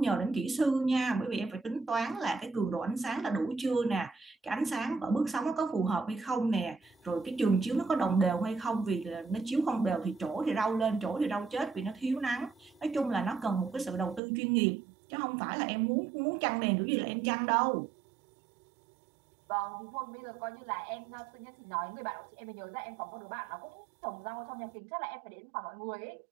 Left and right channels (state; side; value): drops out; left; at 14.2 s